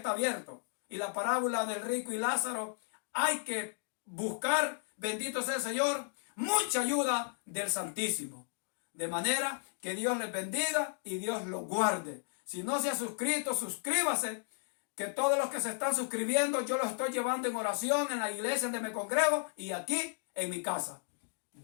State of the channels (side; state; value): right; silent; digital silence